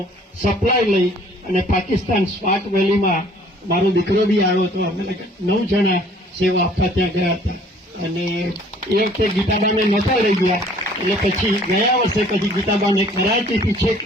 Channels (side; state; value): both; normal; correlation 0.56